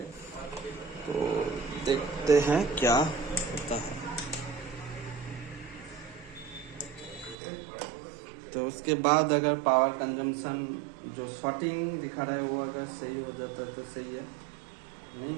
तो देखते हैं क्या होता है। तो उसके बाद अगर पावर कंजम्पशन जो शॉर्टिंग दिखा रहा है वो अगर सही हो जाता है तो सही है, नहीं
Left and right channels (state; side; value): drops out; left; at 7.4 s